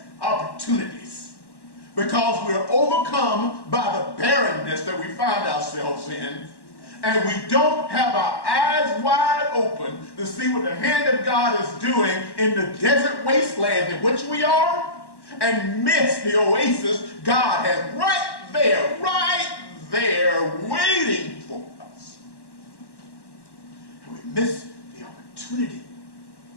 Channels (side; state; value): right; late; 1.1 ms